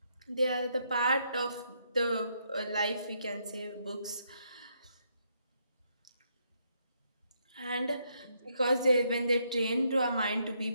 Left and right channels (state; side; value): inverted; both; correlation -0.75